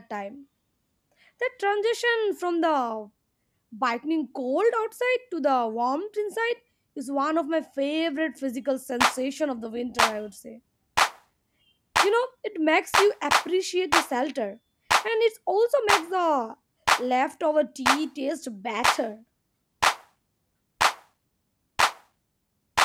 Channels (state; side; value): identical; both; correlation 1.00